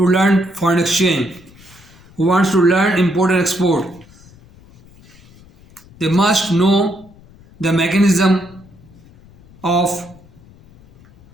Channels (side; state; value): left; noise; rumble, 25 dB below the sound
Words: learn foreign exchange, who wants to learn import and export, they must know the mechanism of